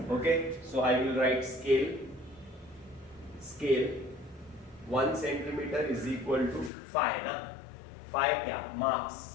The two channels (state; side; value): drops out; right; at 6.7 s